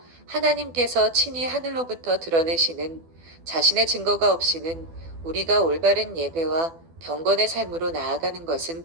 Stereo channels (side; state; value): left; late; 12 ms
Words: 하나님께서 친히 하늘로부터 드러내시는 자신의 증거가 없이는 우리가 올바른 예배와 경건의 삶으로 나아가는 것은